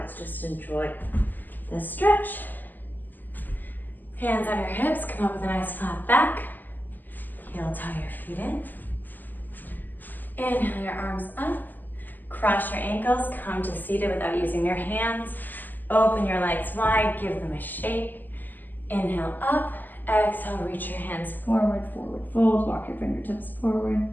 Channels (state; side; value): late; right; 0.086 ms